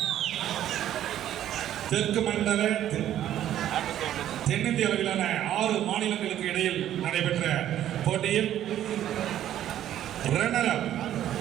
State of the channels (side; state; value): left; quieter; 11.7 dB